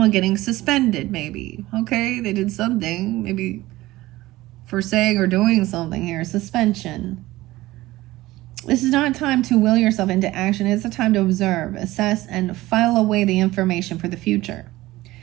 getting suspended, maybe. Okay, they did something. Maybe for saying or doing something here. Suspension. This is not a time to will yourself into action. It's a time to observe, assess, and file away the information for the future.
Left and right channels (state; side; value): quieter; left; 17.8 dB